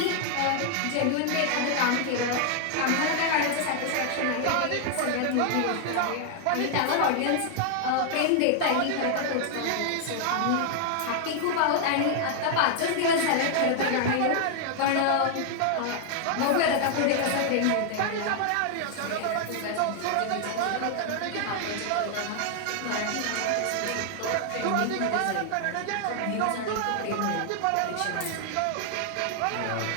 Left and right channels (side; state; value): both; different; correlation 0.00